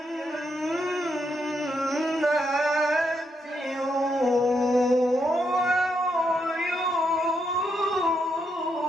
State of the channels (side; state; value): both; normal; correlation 0.79